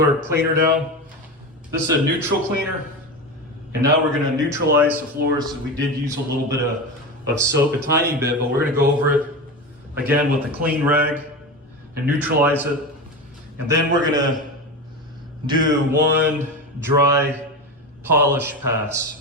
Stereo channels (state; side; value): normal; both; correlation 0.23